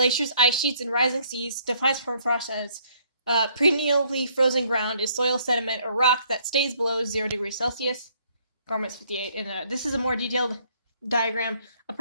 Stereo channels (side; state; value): both; inverted; correlation -0.65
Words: ice sheets, and rising seas defines permafrost as perennially frozen ground is soil, sediment, or rock that stays below 0 degrees Celsius. Garments 58. And this is a more detailed diagram of